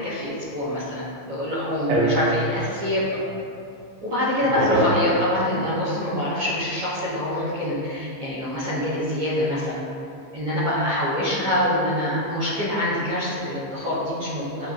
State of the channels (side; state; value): left; late; 15 ms